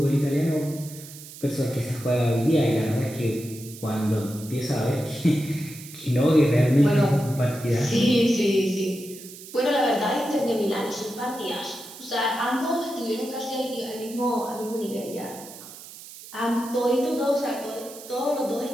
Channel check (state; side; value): noise; right; hiss, 16 dB below the sound